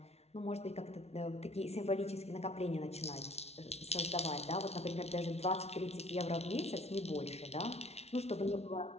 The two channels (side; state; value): right; late; 0.31 ms